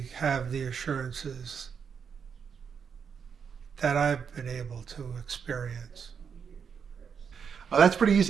have the assurances that I've been able to experience. That's pretty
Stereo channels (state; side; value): quieter; left; 6.7 dB